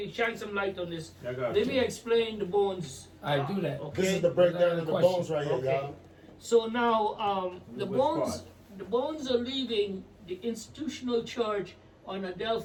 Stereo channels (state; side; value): identical; both; correlation 1.00